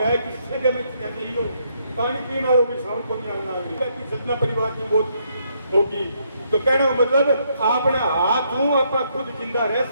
किससे जब नहीं हो पानी पीना होगी, साउंड को नहीं आना होगी, सतना परिवार की मौत होगी। तो कहने का मतलब आपने हाथ हूं आप खुद जिंदा रह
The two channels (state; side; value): inverted; both; correlation -0.73